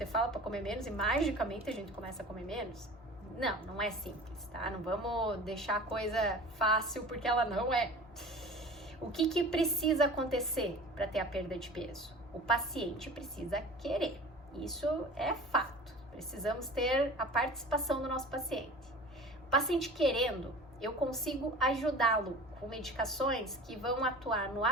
fala para comer menos e magicamente a gente começa a comer menos? Não, não é simples, tá? Não vamos deixar a coisa fácil porque ela não é. O que precisa acontecer para ter a perda de peso? O paciente precisa querer. Isso é fato. Precisamos ter a participação do nosso paciente. O paciente querendo, eu consigo ajudá-lo com medicações que vão atuar no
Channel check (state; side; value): normal; both; correlation 0.39